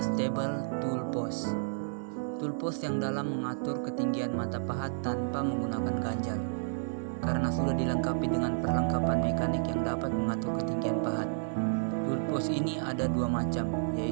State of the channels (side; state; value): left; silent; digital silence